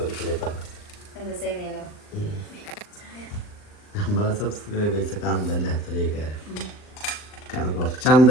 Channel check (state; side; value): late; right; 39 ms